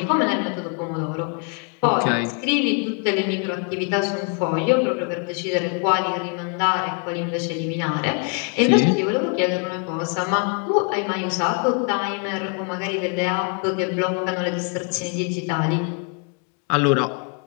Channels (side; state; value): right; quieter; 39.2 dB